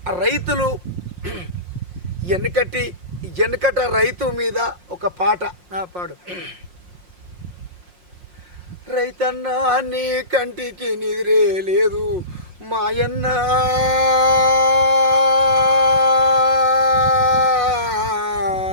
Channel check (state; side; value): late; left; 5.6 ms